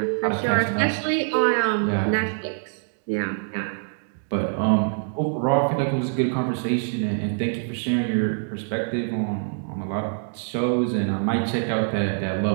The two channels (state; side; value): silent; left; digital silence